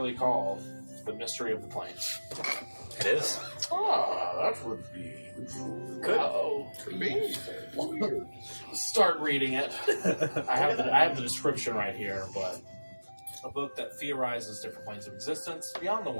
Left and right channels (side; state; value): both; inverted; correlation -1.00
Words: called The Mystery of the Plains. It is. That would be Good. Could be. Start reading it. I have the description right here, but a book that theorizes different planes of existence beyond the